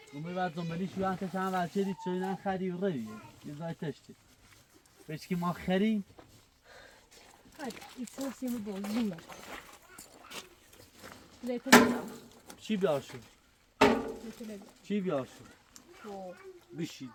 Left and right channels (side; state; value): both; identical; correlation 1.00